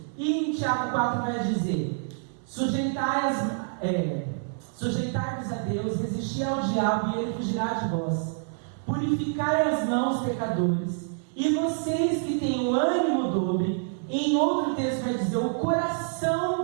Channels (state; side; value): silent; left; 60 dB below the other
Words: E em Tiago 4 vai dizer: sujeitai-vos a Deus, resisti ao diabo e ele fugirá de vós. Purificai as mãos, pecadores, e vocês que têm o ânimo dobre. Em outro texto vai dizer o